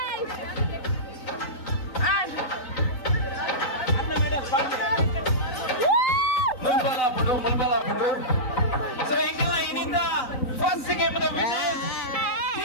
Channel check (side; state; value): right; late; 3.9 ms